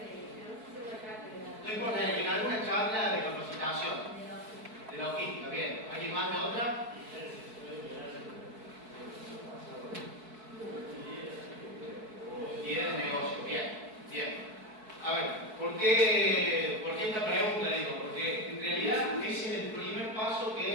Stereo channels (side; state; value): left; late; 4.7 ms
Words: No importa, en alguna charla de capacitación, de logística, bien. ¿Alguien más de otra? Tiene el negocio, bien, bien. A ver, ¿por qué esta pregunta? Digo, porque en realidad ese es el primer paso